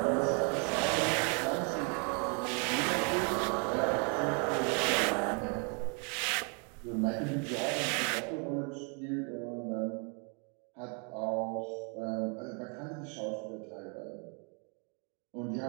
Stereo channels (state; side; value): quieter; left; 36.9 dB